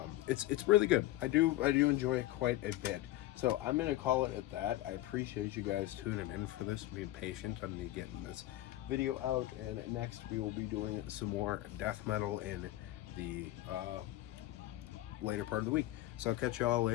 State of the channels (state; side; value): quieter; right; 15.6 dB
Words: It's really good. I do enjoy it quite a bit. So I'm gonna call it at that. I appreciate you guys tuning in for this, being patient on me getting this video out, and next we will be doing some more death metal in the later part of the week. So I'll catch y'all